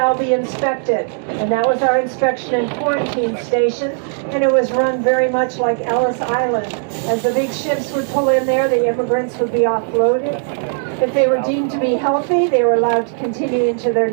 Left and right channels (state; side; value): silent; left; digital silence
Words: be inspected. And that was our inspection and quarantine station. And it was run very much like Ellis Island. As the big ships would pull in there, the immigrants would be offloaded. If they were deemed to be healthy, they were allowed to continue into their